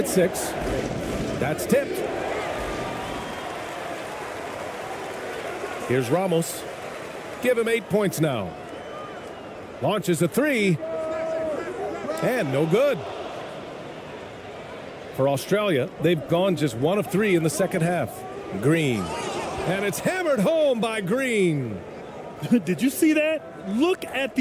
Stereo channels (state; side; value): identical; both; correlation 1.00